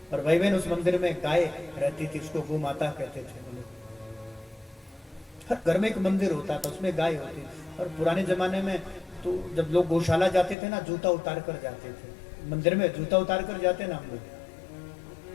और भाई बहन उस मंदिर में गाय रहती थी, उसको गौ माता कहते थे। हर घर में एक मंदिर होता था, उसमें गाय होती। और पुराने जमाने में तो जब लोग गौशाला जाते थे ना, जूता उतार कर जाते थे। मंदिर में जूता उतार कर जाते ना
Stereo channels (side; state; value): right; drops out; at 10.6 s